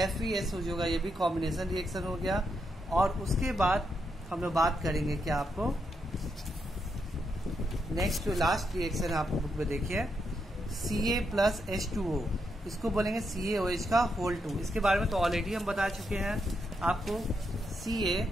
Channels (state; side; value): normal; both; correlation 0.81